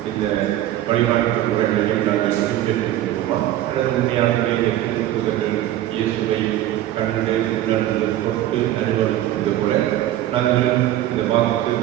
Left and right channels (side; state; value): left; quieter; 13.5 dB